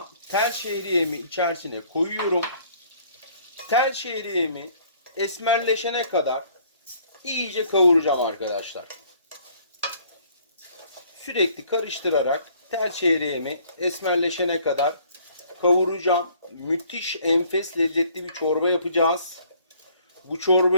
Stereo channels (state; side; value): inverted; both; correlation -0.59